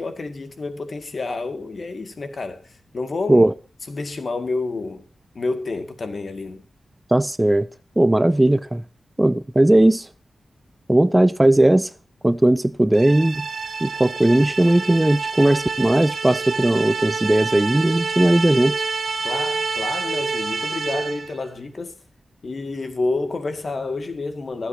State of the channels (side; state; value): both; normal; correlation 0.98